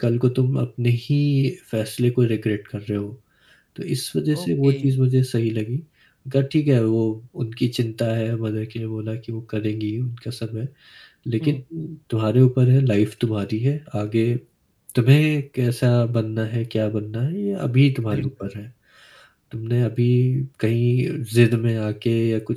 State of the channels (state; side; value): identical; both; correlation 1.00